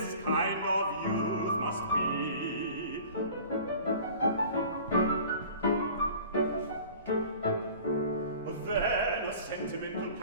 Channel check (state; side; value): inverted; both; correlation -0.44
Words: kind of youth must be. Then a sentimental